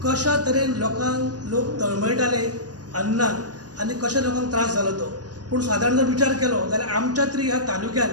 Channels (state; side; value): late; left; 0.69 ms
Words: कशा तरेन लोक तळमळटाले अन्नान आनी कशा लोकांक त्रास जालो तो। पूण सादारण जर विचार केलो जाल्यार आमच्या तरी ह्या तालुक्यान